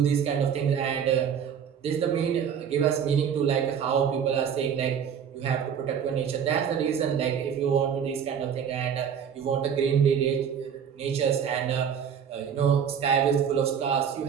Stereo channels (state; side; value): quieter; left; 7.9 dB